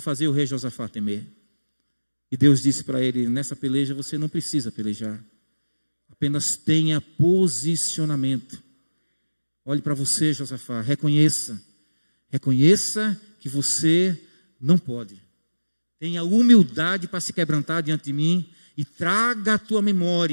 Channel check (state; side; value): inverted; both; correlation -1.00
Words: fazer o rei Josafá temer. E Deus disse para ele: nessa peleja você não precisa pelejar, apenas tenha posicionamento. Olhe para você, Josafá, reconheça que você não pode. Tenha humildade para se quebrantar diante de mim e traga à tua